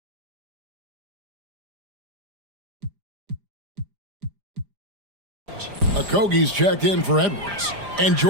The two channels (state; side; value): late; left; 5.0 ms